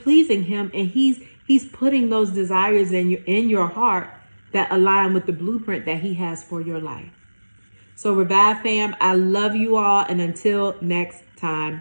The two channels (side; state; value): both; inverted; correlation -1.00